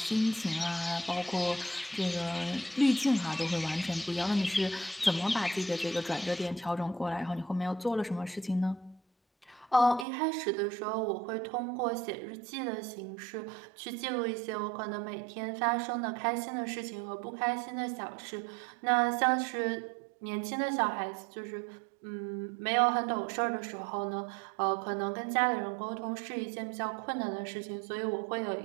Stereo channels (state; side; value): drops out; left; at 10.1 s